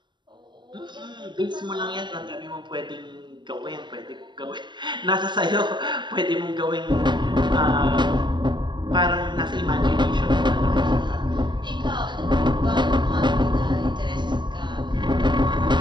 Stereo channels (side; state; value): left; late; 0.22 ms